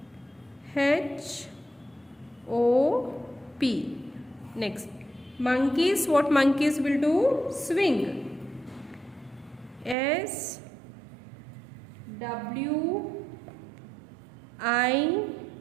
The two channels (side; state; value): left; drops out; at 10.0 s